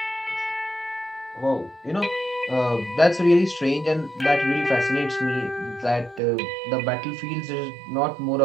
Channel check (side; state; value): left; drops out; at 6.2 s